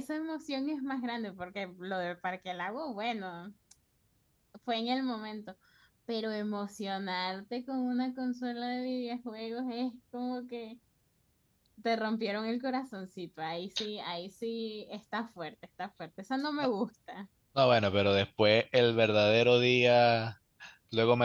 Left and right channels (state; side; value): identical; both; correlation 1.00